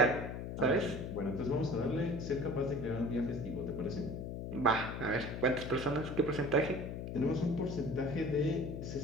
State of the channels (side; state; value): left; noise; hum, 6 dB below the sound